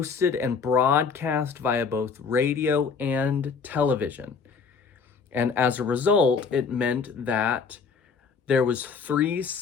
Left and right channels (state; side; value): quieter; right; 5.5 dB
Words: and broadcast via both radio and television. And as a result, it meant that there was three